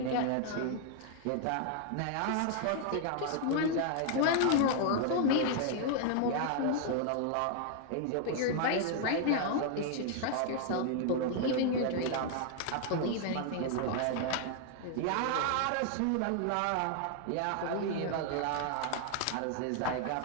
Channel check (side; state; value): both; different; correlation 0.00